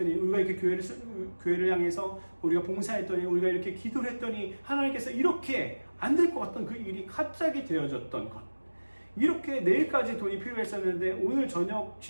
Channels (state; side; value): inverted; both; correlation -1.00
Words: 우리가 이렇게 교회를 향해서 우리가 봉사했더니, 우리가 이렇게 기도를 했더니 하나님께서 이렇게 안 될 것 같던 그 일이 갑자기 되어졌던 것. 이렇게 내일까지 돈이 필요했었는데 오늘 저녁